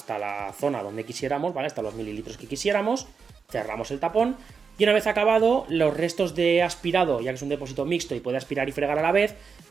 la zona donde quisiéramos, ¿vale? Hasta los mililitros que quisiéramos, cerramos el tapón y una vez acabado, los restos de aspirado, ya que es un depósito mixto y puede aspirar y fregar a la vez,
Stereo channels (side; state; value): left; quieter; 5.6 dB